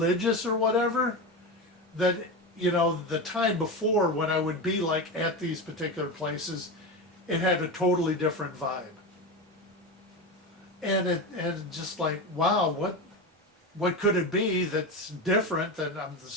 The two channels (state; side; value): normal; both; correlation 0.21